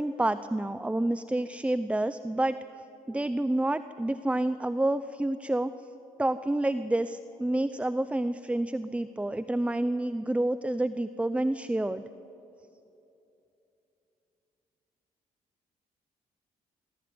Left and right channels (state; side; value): normal; both; correlation 0.96